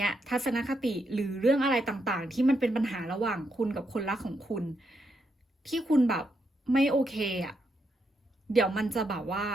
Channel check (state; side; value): normal; both; correlation 0.80